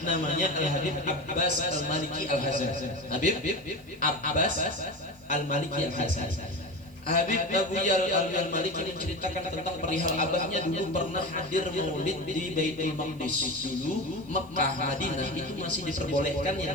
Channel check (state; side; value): noise; right; hiss, 29 dB below the sound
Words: namanya Al-Habib Abbas Al-Maliki Al-Hasani. Habib Abbas Al-Maliki Al-Hasani. Habib Abuya Al-Maliki menceritakan tentang perihal abahnya dulu pernah hadir maulid di Baitul Maqdis. Dulu Mekah, Madinah itu masih diperbolehkan